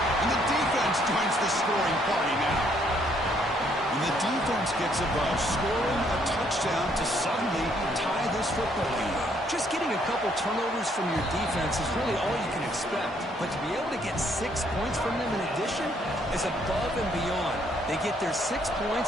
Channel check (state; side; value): normal; both; correlation 0.68